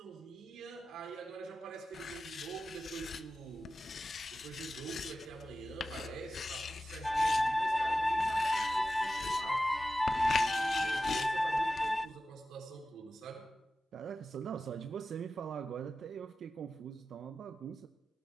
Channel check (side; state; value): both; normal; correlation 0.94